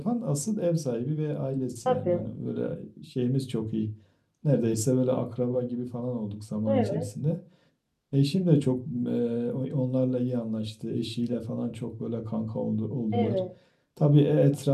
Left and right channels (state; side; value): identical; both; correlation 1.00